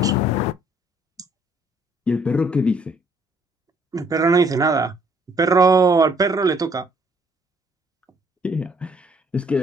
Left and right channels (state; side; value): normal; both; correlation 0.64